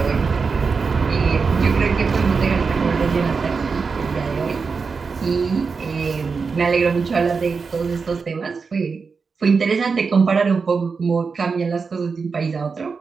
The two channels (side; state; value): left; quieter; 5.0 dB